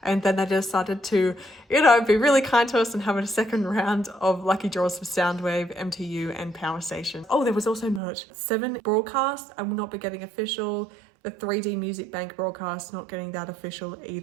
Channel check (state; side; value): drops out; left; at 8.0 s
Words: And then they decided to, you know, be really kind to us and have a second round of lucky draws for Soundwave, MTU and Power Station. Oh, there was also merch. 7 broadcasts, I will not be getting official. The 3D Music Bank broadcast, not getting that official